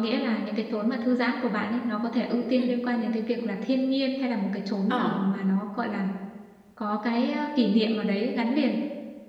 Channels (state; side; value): identical; both; correlation 1.00